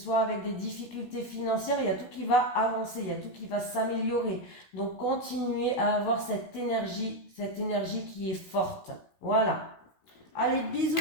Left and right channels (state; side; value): late; right; 16 ms